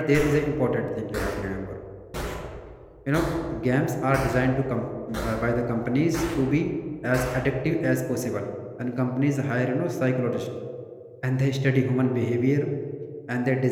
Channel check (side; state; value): both; identical; correlation 1.00